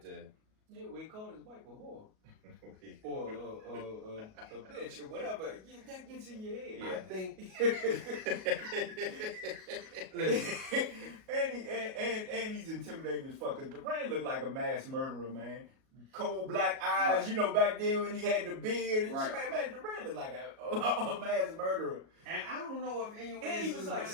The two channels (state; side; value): late; left; 37 ms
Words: to. Yeah, we called his wife a whore. or a bitch or whatever. Yeah, that gets in your head. Yeah. I think. and he's intimidating as fuck. Cause Duran looked like a mass murderer, man. Cold black eyes, you know, back then when he had the beard and shit, man, Duran looked like a mass murderer. And I don't know if anyone and he was like